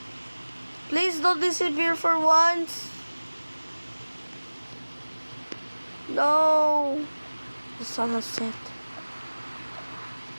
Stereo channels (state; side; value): inverted; both; correlation -1.00